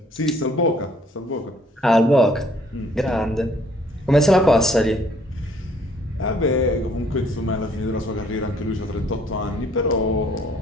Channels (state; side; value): normal; both; correlation 0.61